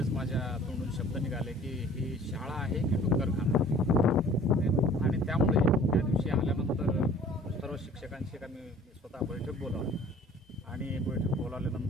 माझ्या तोंडून शब्द निघाले की ही शाळा आहे की डुक्करखाना. आणि त्यामुळे त्या दिवशी आल्यानंतर सर्व शिक्षकांशी आम्ही स्वतः बैठक बोलावली आणि बैठक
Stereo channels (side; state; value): both; normal; correlation 0.50